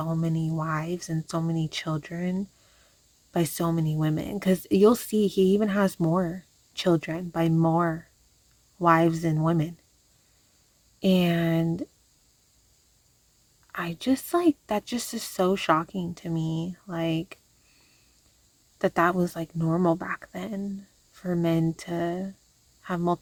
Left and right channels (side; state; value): both; identical; correlation 1.00